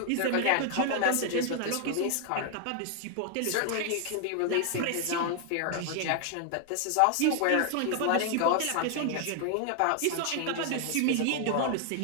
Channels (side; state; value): both; different; correlation 0.00